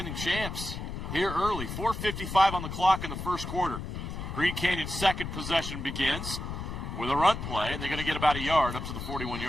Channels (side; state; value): left; noise; rumble, 6 dB below the sound